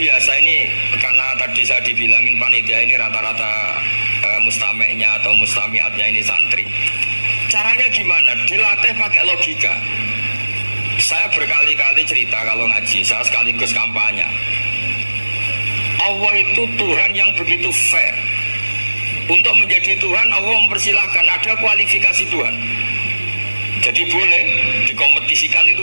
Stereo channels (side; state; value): both; inverted; correlation -1.00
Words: ini karena tadi saya dibilangin panitia ini rata-rata mustameknya atau mustamiatnya ini santri. Caranya gimana? Dilatih pakai logika. Saya berkali-kali cerita kalau ngaji, saya sekaligus kampanye. Allah itu Tuhan yang begitu fair. Untuk menjadi Tuhan Allah mempersilahkan, ada kualifikasi Tuhan. Jadi boleh dikompetisikan,